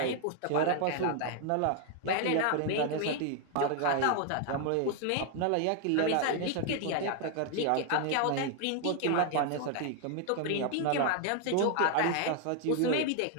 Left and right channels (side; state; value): both; different; correlation 0.00